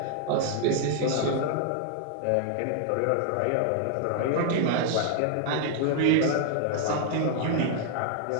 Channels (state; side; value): different; both; correlation 0.00